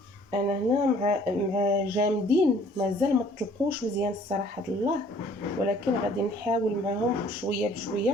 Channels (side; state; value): both; normal; correlation 0.57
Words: انا هنا مع جامدين، مازال ما طلقوش مزيان الصراحه الله، ولكن غادي نحاول معهم شويه